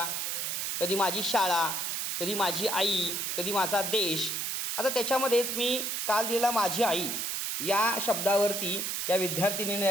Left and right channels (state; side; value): noise; right; hiss, 1 dB below the sound